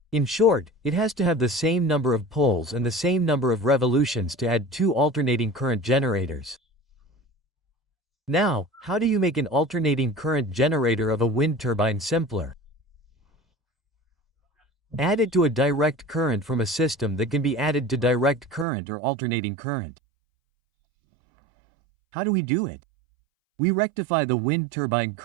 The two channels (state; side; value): drops out; left; at 18.7 s